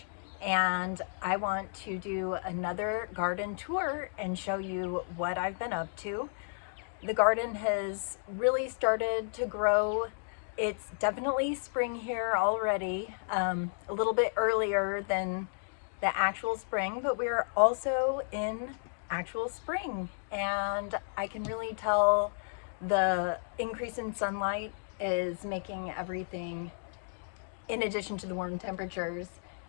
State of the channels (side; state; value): right; silent; digital silence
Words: and I want to do another garden tour and show you what I've been up to. The garden has really started to grow. It's definitely spring here already, a little bit earlier than the actual spring, but we're also in actual spring and I can really tell the increase in sunlight is making everything, in addition to the warm temperatures,